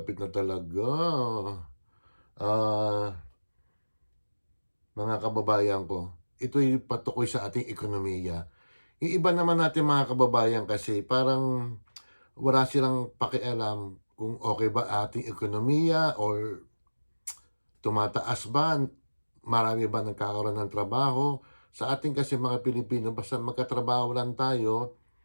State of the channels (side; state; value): both; inverted; correlation -1.00